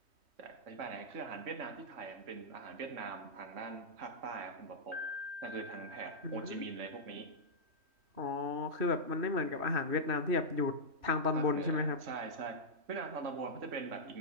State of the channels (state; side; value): late; left; 3.1 ms